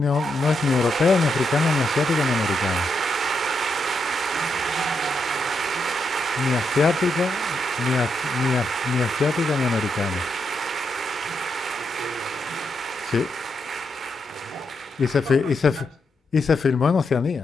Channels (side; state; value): both; normal; correlation 0.81